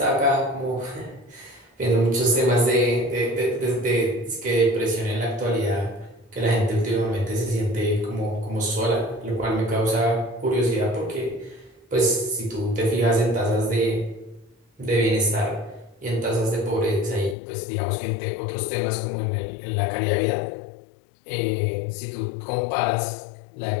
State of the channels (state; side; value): drops out; right; at 17.4 s